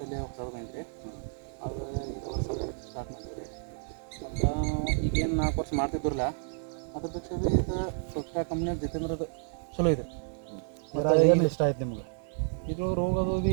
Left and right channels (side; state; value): left; silent; 57 dB below the other